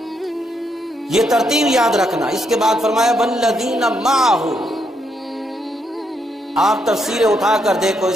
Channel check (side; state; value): both; normal; correlation 0.77